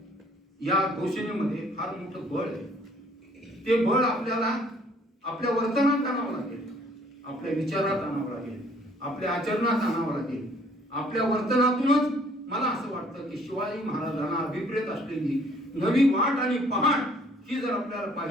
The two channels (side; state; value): both; normal; correlation 0.60